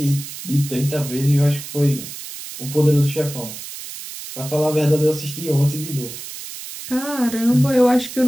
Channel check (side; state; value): right; noise; hiss, 11 dB below the sound